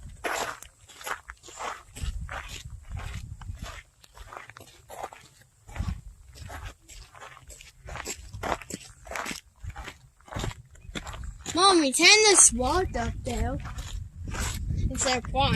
Mommy, turn this wall up there. Instead of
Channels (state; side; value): identical; both; correlation 1.00